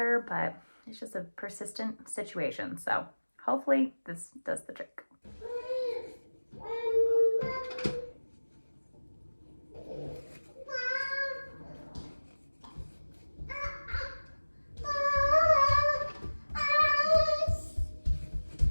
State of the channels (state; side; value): inverted; both; correlation -1.00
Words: but it's just a persistent situation. So hopefully this does the trick.